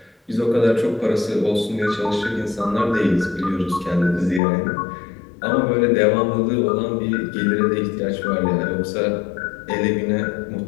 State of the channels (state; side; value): drops out; right; at 4.4 s